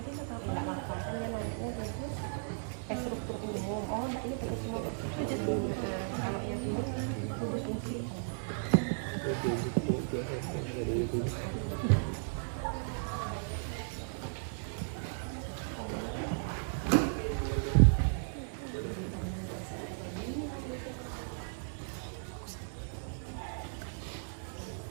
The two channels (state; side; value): silent; left; digital silence